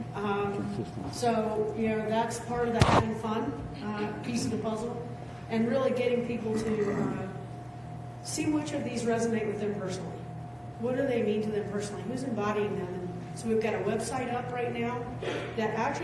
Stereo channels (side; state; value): both; identical; correlation 1.00